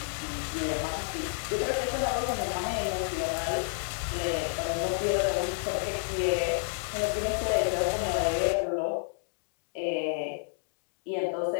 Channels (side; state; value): right; silent; digital silence